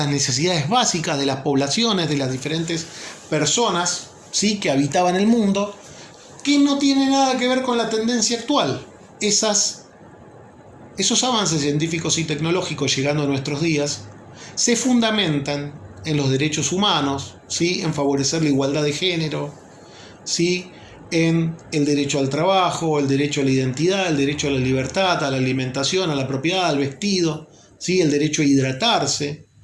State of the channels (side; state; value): both; identical; correlation 1.00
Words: necesidades básicas de las poblaciones, de las diferentes personas, ¿sí?, que habitaban el mundo, que no tiene nada que ver con la tendencia actual. Esos avances científicos y tecnológicos llegando a nuestros días se fundamentan en los derechos humanos, ¿sí?, en favorecer la igualdad de género, ¿sí?, en el derecho al trabajo, el derecho a la identidad, el derecho a la libertad, a la alimentación, a la propiedad, al vestido, ¿sí?, el derecho a hidratarse,